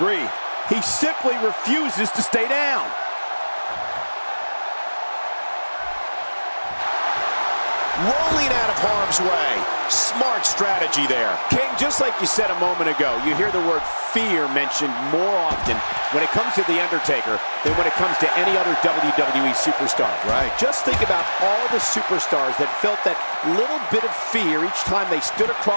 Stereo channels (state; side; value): inverted; both; correlation -1.00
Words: He simply refuses to stay down. Rolling out of harm's way. Smart strategy there. King, just like you said a moment ago, you hear the word fear mentioned more often when it comes to The Undertaker than when it comes to any other WWE superstar. Right. Just think about all the superstars that felt that little bit of fear each time they stood